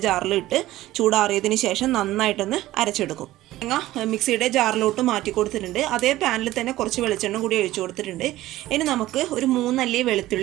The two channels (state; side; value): quieter; left; 15.9 dB